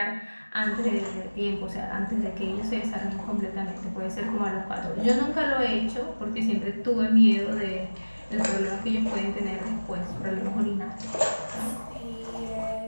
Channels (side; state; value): both; inverted; correlation -1.00